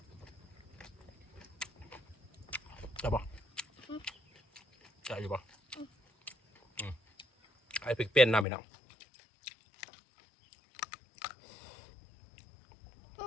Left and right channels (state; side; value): drops out; right; at 8.5 s